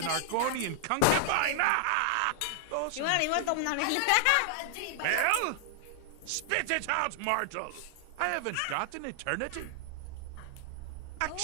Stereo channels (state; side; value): different; both; correlation 0.00